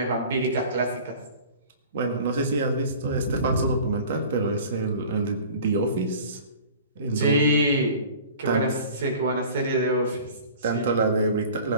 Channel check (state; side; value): inverted; both; correlation -0.43